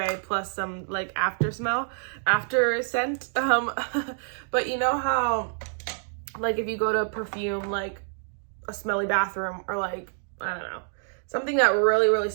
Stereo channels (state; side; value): silent; left; 60 dB below the other